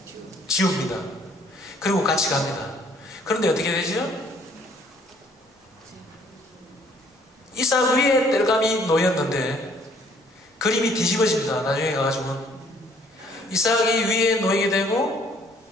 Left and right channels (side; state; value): both; normal; correlation 0.61